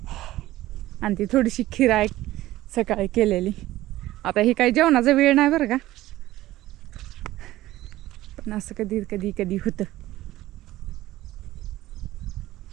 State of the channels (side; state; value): left; quieter; 15.9 dB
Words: आणि ती थोडीशी खीर आहे सकाळी केलेली. आता ही काही जेवणाचा वेळ नाही बरं का, पण असं कधी कधी कधी होतं.